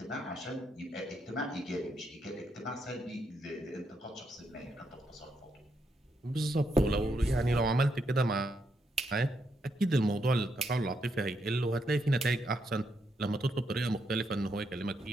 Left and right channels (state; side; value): normal; both; correlation 0.79